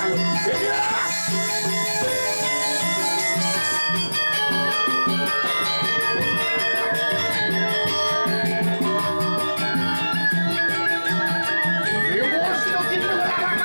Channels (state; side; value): inverted; both; correlation -1.00